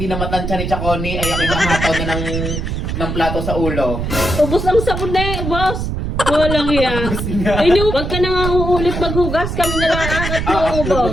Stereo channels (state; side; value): noise; right; rumble, 3 dB below the sound